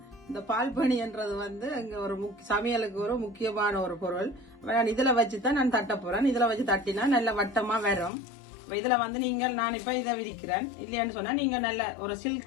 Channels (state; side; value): drops out; right; at 8.1 s